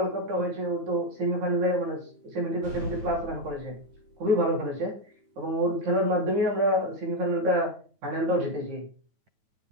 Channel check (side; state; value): left; late; 9.2 ms